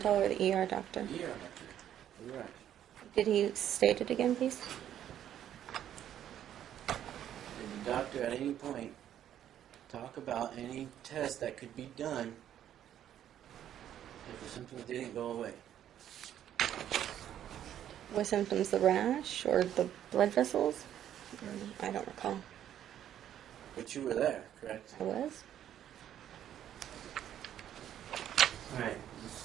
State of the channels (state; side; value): quieter; left; 10.7 dB